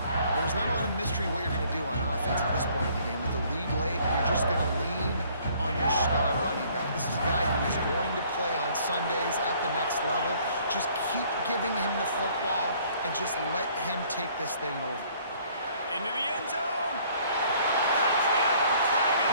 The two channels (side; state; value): both; inverted; correlation -0.60